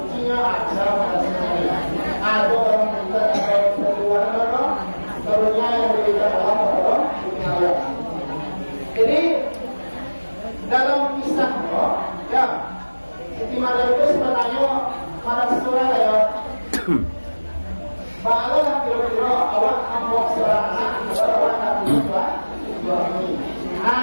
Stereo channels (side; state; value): both; inverted; correlation -1.00